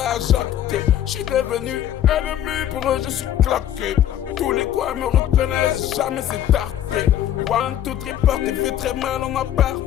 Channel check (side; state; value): right; quieter; 11.2 dB